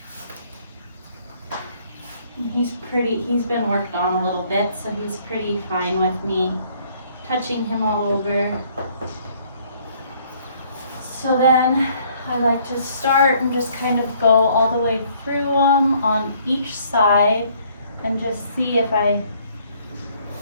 He's been worked on a little bit, so he's pretty fine with me touching him all over. So then I like to start and just kind of go all the way through them on each side and just see if I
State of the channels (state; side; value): inverted; both; correlation -0.63